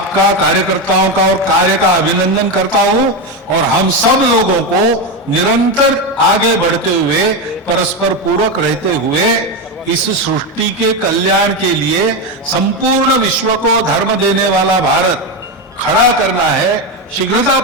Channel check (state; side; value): normal; both; correlation 0.12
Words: कार्यकर्ताओं का और कार्य का अभिनंदन करता हूं, और हम सब लोगों को निरंतर आगे बढ़ते हुए, परस्पर पूरक रहते हुए इस सृष्टि के कल्याण के लिए संपूर्ण विश्व को धर्म देने वाला भारत खड़ा करना है,